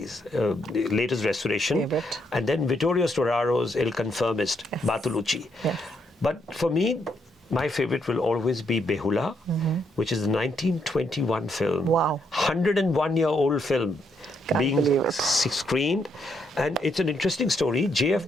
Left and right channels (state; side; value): normal; both; correlation 0.76